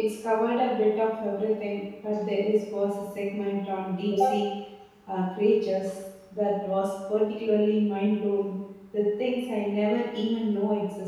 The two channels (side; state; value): both; identical; correlation 1.00